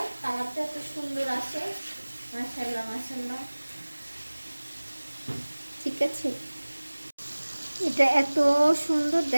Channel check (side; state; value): both; inverted; correlation -1.00